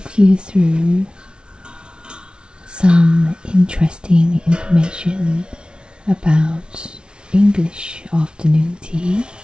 you through some interesting information about English afternoon tea.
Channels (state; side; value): late; left; 0.056 ms